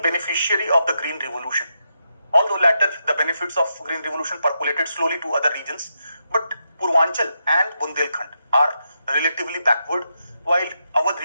beneficiary of the Green Revolution. Although later the benefits of Green Revolution percolated slowly to other regions, but Purvanchal and Bundelkhand are relatively backward, while our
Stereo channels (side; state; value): both; inverted; correlation -0.84